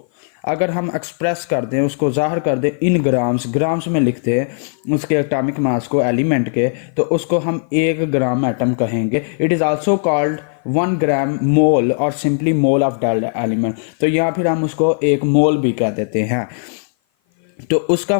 अगर हम एक्सप्रेस कर दें, उसको जाहिर कर दें इन ग्राम्स में लिखते हैं उसके एटॉमिक मास को एलिमेंट के, तो उसको हम 1 ग्राम एटम कहेंगे। इट इज़ आल्सो कॉल्ड 1 ग्राम मोल और simply mole of that element. तो यहाँ फिर हम उसको 1 मोल भी कह देते हैं। तो उसका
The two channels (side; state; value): right; silent; 55 dB below the other